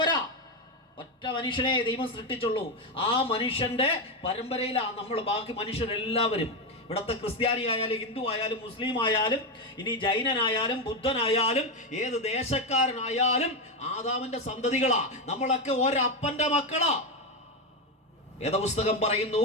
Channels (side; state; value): both; normal; correlation 0.10